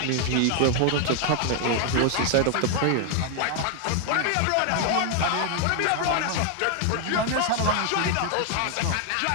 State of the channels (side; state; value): both; different; correlation 0.00